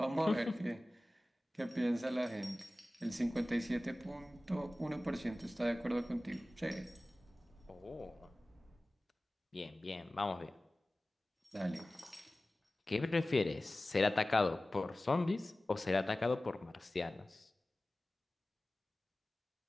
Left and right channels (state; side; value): normal; both; correlation 0.97